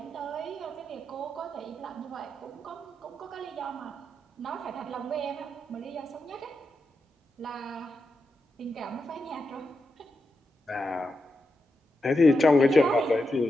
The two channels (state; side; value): normal; both; correlation 0.87